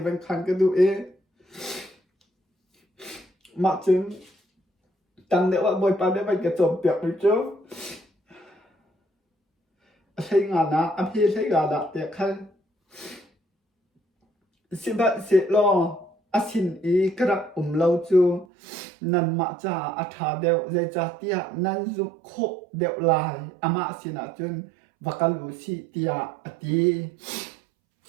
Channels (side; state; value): left; drops out; at 18.4 s